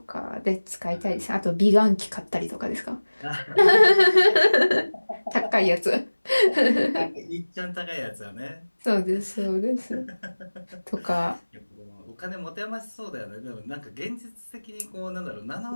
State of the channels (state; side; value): inverted; both; correlation -1.00